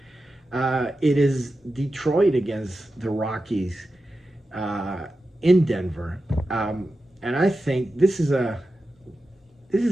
it is Detroit against the Rockies in Denver, and I think this is a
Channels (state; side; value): normal; both; correlation 0.92